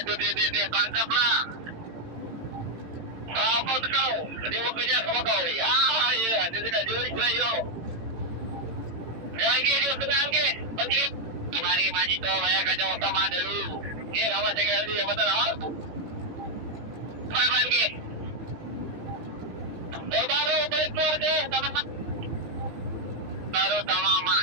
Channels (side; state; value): left; late; 18 ms